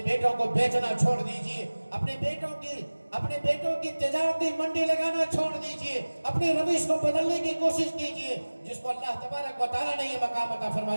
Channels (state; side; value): inverted; both; correlation -1.00